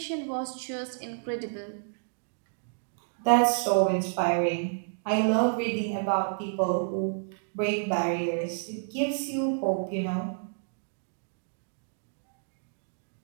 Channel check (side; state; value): left; silent; digital silence